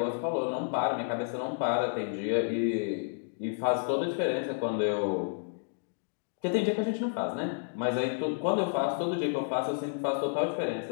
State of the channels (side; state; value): right; silent; digital silence